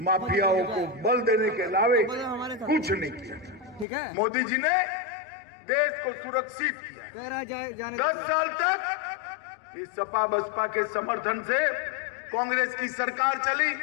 माफियाओं को बल देने के अलावे कुछ नहीं किया। मोदी जी ने देश को सुरक्षित किया। 10 साल तक इस सपा बसपा के समर्थन से कांग्रेस की सरकार चली।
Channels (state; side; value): drops out; right; at 3.9 s